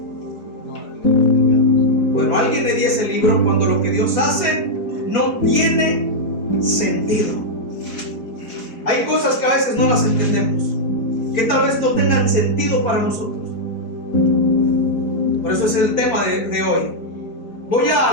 Bueno, alguien le di ese libro, cuando lo que Dios hace no tiene sentido. Hay cosas que a veces no las entendemos, que tal vez no tengan sentido para nosotros. Por eso es el tema de hoy. Voy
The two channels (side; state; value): right; late; 4.4 ms